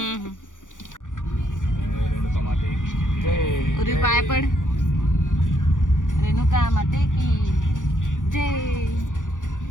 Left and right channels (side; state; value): right; late; 0.87 ms